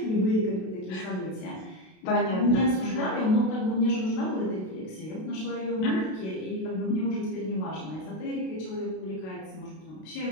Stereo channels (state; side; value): late; right; 32 ms